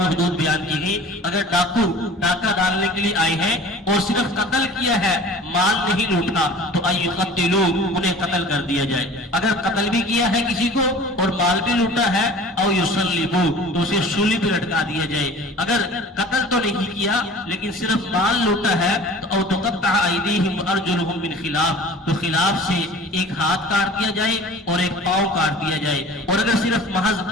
حدود بیان کی گئی، اگر ڈاکو ڈاکہ ڈالنے کے لیے آئے ہیں اور صرف قتل کیا ہے، مال نہیں لوٹا، تو ان یقتلوا، انہیں قتل کر دیا جائے۔ اگر قتل بھی کیا ہے کسی کو اور مال بھی لوٹا ہے، او یصلبوا، تو اسے سولی پہ لٹکا دیا جائے۔ اگر قتل تو نہیں کیا لیکن صرف مال لوٹا ہے تو او تقطع ایدیہم وارجلہم من خلاف، تو خلاف سے ایک ہاتھ کاٹ دیا جائے اور ایک پاؤں کاٹ دیا جائے۔ اور اگر صرف محض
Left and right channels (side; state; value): both; normal; correlation 0.43